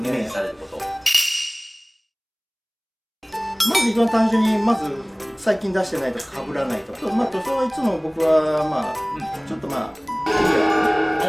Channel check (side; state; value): both; identical; correlation 1.00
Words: イメージされること。まず一番単純に最近出してないとか被らないとか、塗装はいつも僕はちょっとクリア